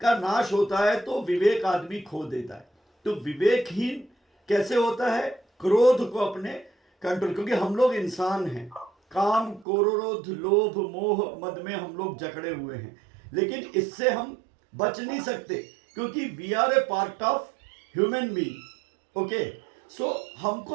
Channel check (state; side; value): drops out; left; at 9.7 s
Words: का नाश होता है तो विवेक आदमी खो देता है। तो विवेकहीन कैसे होता है? क्रोध को अपने कंट्रोल, क्योंकि हम लोग इंसान हैं, काम, क्रोध, लोभ, मोह, मद में हम लोग जकड़े हुए हैं। लेकिन इससे हम बच नहीं सकते, क्योंकि we are a part of human being. Okay, so